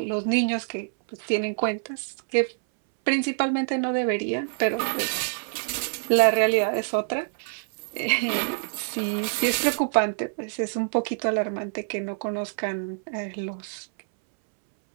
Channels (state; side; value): silent; left; 61 dB below the other